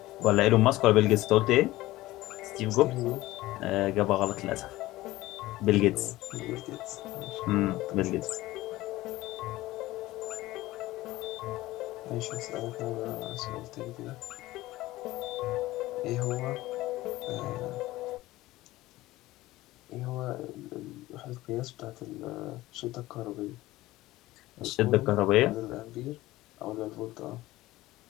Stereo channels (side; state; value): right; quieter; 17.5 dB